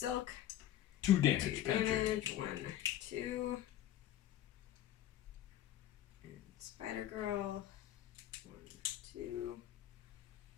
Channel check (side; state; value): right; quieter; 12.4 dB